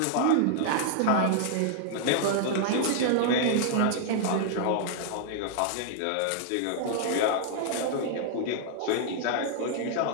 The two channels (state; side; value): different; both; correlation -0.01